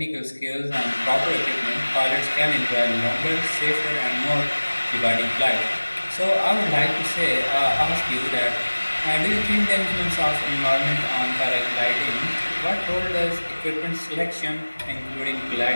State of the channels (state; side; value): inverted; both; correlation -1.00